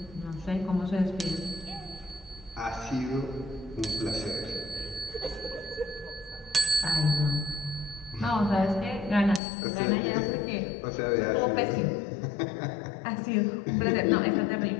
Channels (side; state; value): right; drops out; at 9.4 s